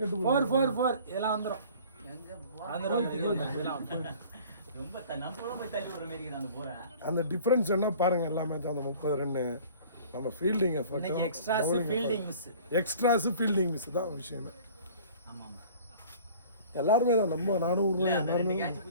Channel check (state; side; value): inverted; both; correlation -0.47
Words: 4 இதெல்லாம் வந்துடும். ரொம்ப நம்ம போய் தள்ளி விடுற மாதிரி நான் போறேன். அந்த டிஃபரன்ஸ் என்ன பாருங்க. எல்லா மேட்ச் அந்த 30 ரன்னு நம்ம fielding effort, extras fielding miss தான் விஷயமே. ஆமா ஆமா எல்லாருமே தான் நம்ம நானும்